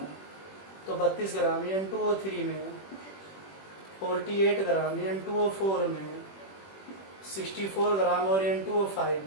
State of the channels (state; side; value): late; right; 21 ms